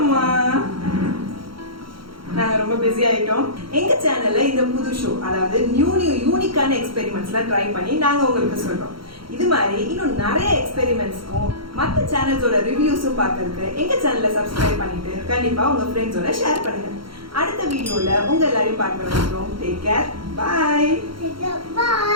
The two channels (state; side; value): late; left; 0.73 ms